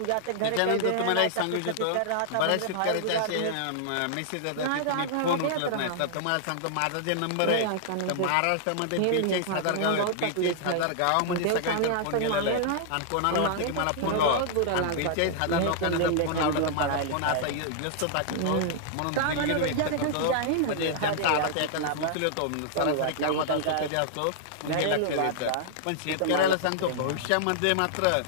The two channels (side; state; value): both; different; correlation -0.01